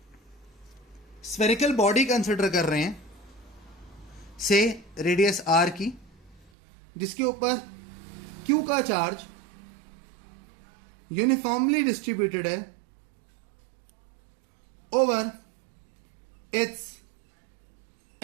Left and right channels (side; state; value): left; drops out; at 6.5 s